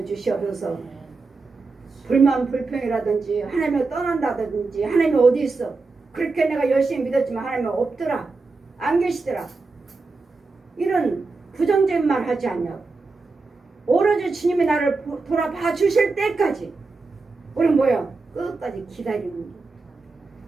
주시옵소서. 불만 불평이라든지 하나님을 떠난다든지 하나님이 어디 있어? 그렇게 내가 열심히 믿었지만 하나님은 없더라. 안 계시더라. 이런 부정적인 말 하지 않냐고. 오로지 주님이 나를 돌아봐 주실 때까지 우리는 뭐야? 끝까지 기다리는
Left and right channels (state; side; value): quieter; left; 3.9 dB